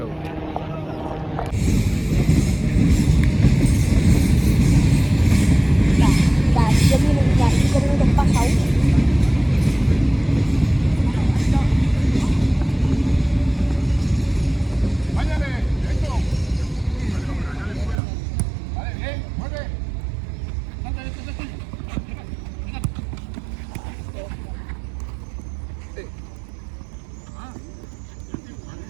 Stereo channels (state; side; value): drops out; left; at 17.9 s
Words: Hindi ko rin nagpasaw.